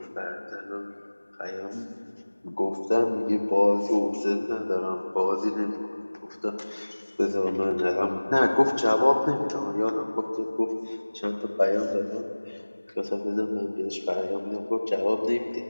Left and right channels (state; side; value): inverted; both; correlation -1.00